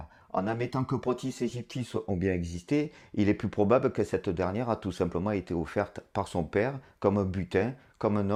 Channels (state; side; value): identical; both; correlation 1.00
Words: En admettant que Protis et Gyptis ont bien existé, il est plus probable que cette dernière a tout simplement été offerte par son père comme un butin, comme un